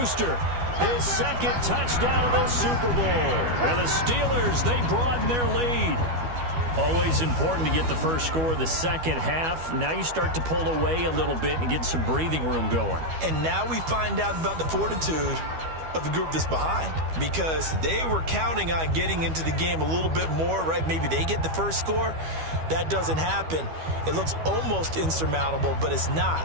his second touchdown of the Super Bowl. And the Steelers, they broaden their lead. Always important to get the first score of the second half. Now you start to pull away a little bit and get some breathing room going. And now we find out about the fortitude of the group that's behind, because they were counting on getting into the game a little bit more, right? Maybe they get the first score. That doesn't happen. It looks almost insurmountable, but it's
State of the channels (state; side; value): late; left; 12 ms